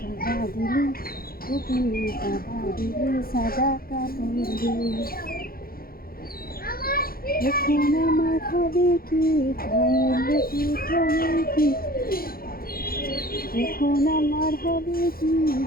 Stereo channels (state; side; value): late; right; 0.43 ms